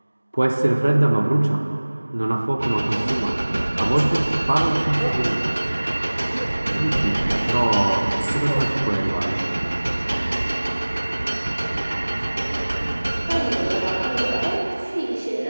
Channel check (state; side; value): inverted; both; correlation -1.00